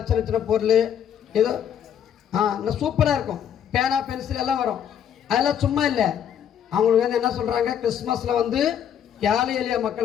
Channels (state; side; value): quieter; right; 9.1 dB